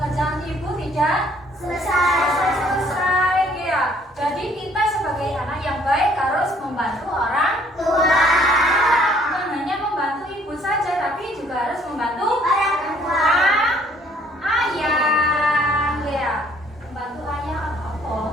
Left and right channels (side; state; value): both; normal; correlation 0.61